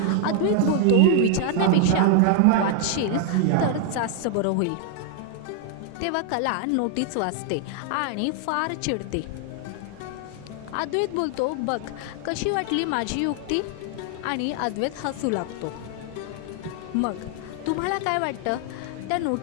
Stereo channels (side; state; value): both; different; correlation 0.00